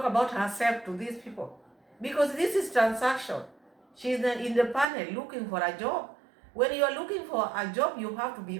about herself to these people. Because this is transaction. She's in the panel looking for a job. When you are looking for a job, you have to be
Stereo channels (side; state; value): left; drops out; at 4.9 s